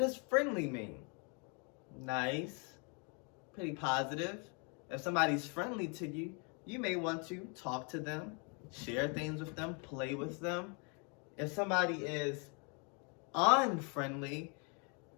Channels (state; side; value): quieter; right; 35.6 dB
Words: friendly mean? Nice, pretty positive. If somebody's friendly to you, you may want to talk to them, share things with them, play with them. If somebody is unfriendly,